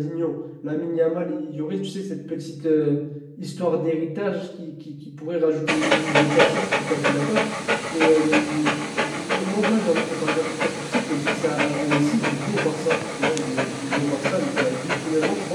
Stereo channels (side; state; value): both; identical; correlation 1.00